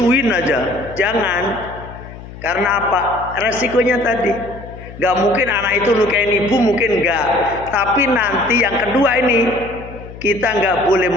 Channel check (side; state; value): left; noise; hum, 15 dB below the sound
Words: aja. Jangan. Karena apa? Resikonya tadi, nggak mungkin anak itu lukain ibu, mungkin nggak. Tapi nanti yang kedua ini, kita nggak boleh